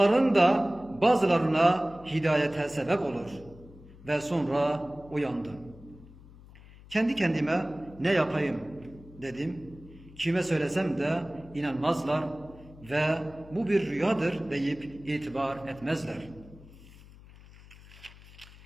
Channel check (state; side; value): noise; left; hum, 21 dB below the sound